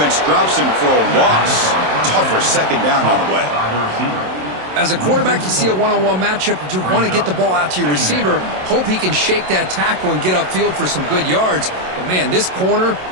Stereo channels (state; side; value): late; left; 27 ms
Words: drops him for a loss. Tougher 2nd down on the way. As a quarterback, you see a one-on-one matchup, you want to get the ball out to your receiver, hope he can shake that tackle and get upfield for some good yards. But, man, this corner